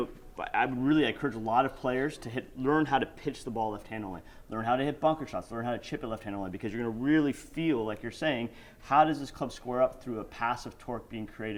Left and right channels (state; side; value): identical; both; correlation 1.00